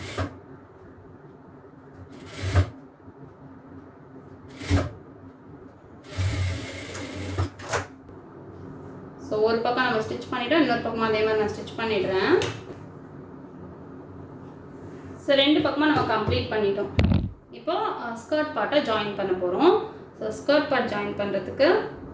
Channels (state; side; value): identical; both; correlation 1.00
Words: ஸோ ஒரு பக்கம் நம்ம ஸ்டிச் பண்ணிவிட்டோம், இன்னொரு பக்கமாக அதே மாதிரி நான் ஸ்டிச் பண்ணிடுறேன். ஸோ ரெண்டு பக்கமாக நம்ம கம்ப்ளீட் பண்ணிட்டோம். இப்போ ஸ்கர்ட் பார்ட்டை ஜாயின் பண்ண போகிறோம். ஸோ ஸ்கர்ட் பார்ட் ஜாயின் பண்ணுறதுக்கு